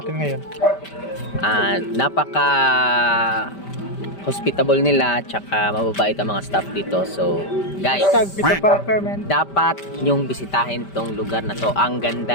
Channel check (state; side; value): late; right; 5.1 ms